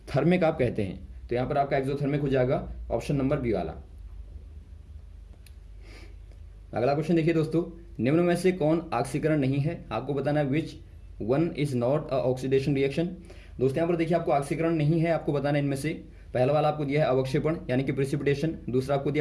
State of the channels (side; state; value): both; identical; correlation 1.00